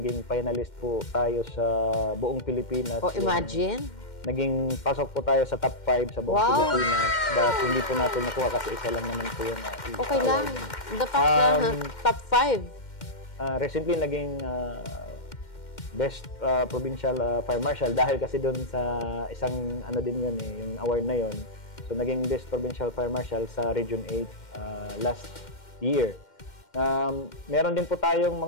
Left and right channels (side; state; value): right; late; 2.1 ms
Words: finalist po tayo sa buong Pilipinas. Imagine. Naging pasok po tayo sa top 5 sa buong Pilipinas, but hindi po natin nakuha kasi isa lang naman po yung Okay lang. award. The fact na top 5. Recently, naging best provincial fire marshal dahil kasi doon sa isang din yun yung award na yun. So naging best provincial fire marshal sa Region 8 last year. Meron din po tayong